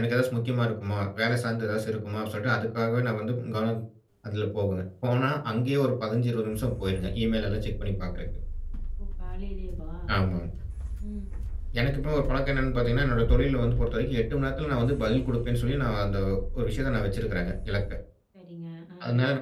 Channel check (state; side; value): identical; both; correlation 1.00